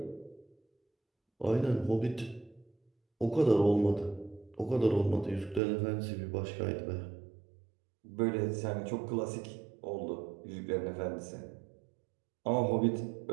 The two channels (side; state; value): left; drops out; at 5.6 s